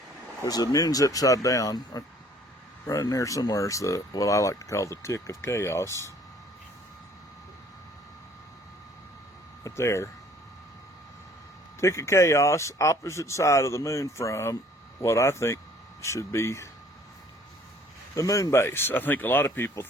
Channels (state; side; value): normal; both; correlation 0.57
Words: there's the moon's upside down. Right in there somewhere is what I like to call the tick of chaos. Right there. Tick of chaos, opposite side of the moon from what I think should be the moon base. I think a lot of people